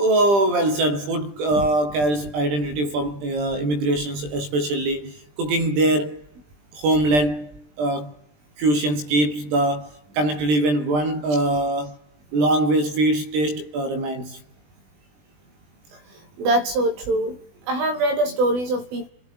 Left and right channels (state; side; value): late; left; 20 ms